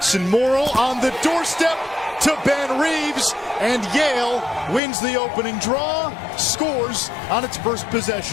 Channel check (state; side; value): drops out; right; at 4.8 s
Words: Morrill on the doorstep to Ben Reeves, and Yale wins the opening draw, scores on its first